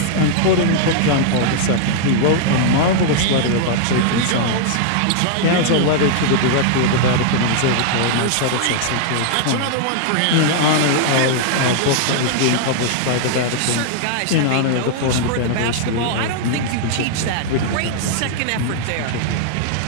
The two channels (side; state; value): both; different; correlation -0.01